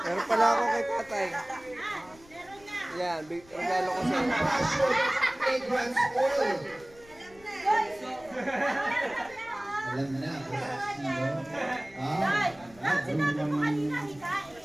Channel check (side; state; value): left; noise; rumble, 25 dB below the sound